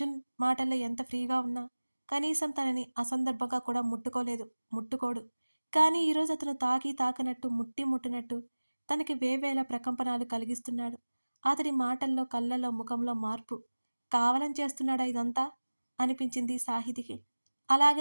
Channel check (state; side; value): inverted; both; correlation -1.00